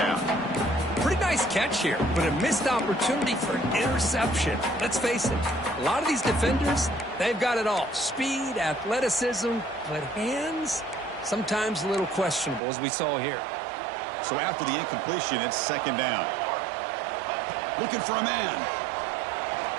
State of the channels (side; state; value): left; drops out; at 12.6 s